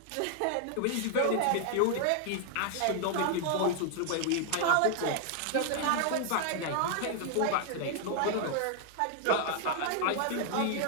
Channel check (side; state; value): both; different; correlation 0.00